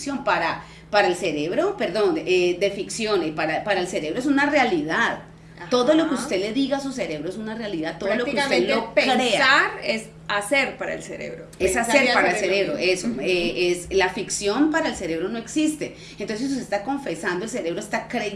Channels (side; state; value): both; identical; correlation 1.00